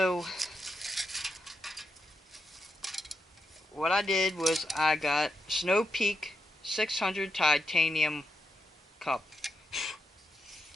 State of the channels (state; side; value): normal; both; correlation 0.84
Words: what I did was I got Snow Peak 600 titanium cup,